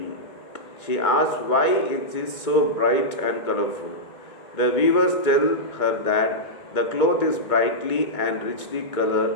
She asks why it is so bright and colorful. The weavers tell her that the cloth is brightly and richly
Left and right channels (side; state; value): right; late; 2.2 ms